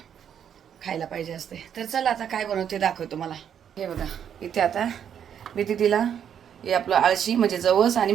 खायला पाहिजे असते. तर चला आता काय बनवते दाखवतो मला. हे बघा इथे आता मी तिला हे आपलं आळशी म्हणजे जवस आणि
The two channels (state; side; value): quieter; left; 8.7 dB